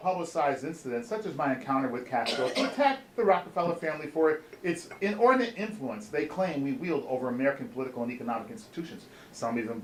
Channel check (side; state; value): both; identical; correlation 1.00